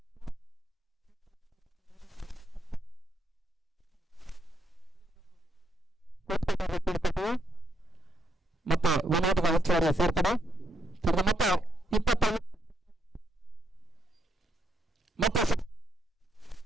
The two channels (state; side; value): normal; both; correlation 0.78